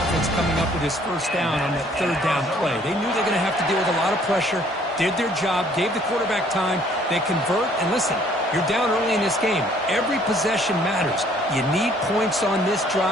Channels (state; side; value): normal; both; correlation 0.60